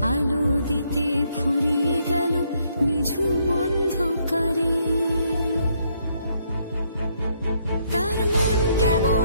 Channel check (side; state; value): both; inverted; correlation -0.72